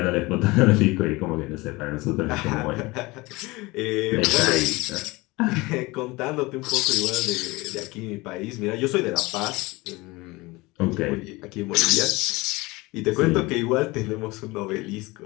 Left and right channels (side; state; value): right; quieter; 22.5 dB